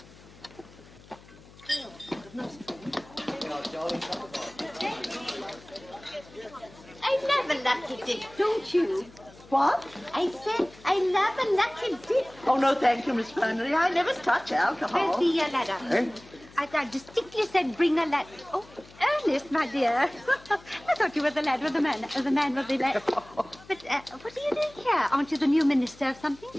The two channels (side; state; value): left; noise; hum, 23 dB below the sound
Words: I love a lucky dip, don't you? What? I said I love a lucky dip. Oh, no, thank you, Miss Flannery. I never touch alcohol. Where's the ladder? Eh? I distinctly said bring a ladder. Oh, Ernest, my dear. I thought you were the lad with the man with the lad. But what are you doing here? Aren't you the new minister of something?